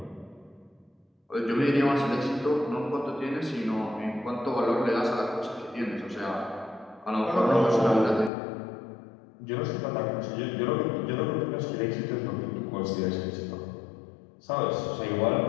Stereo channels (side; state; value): right; drops out; at 8.3 s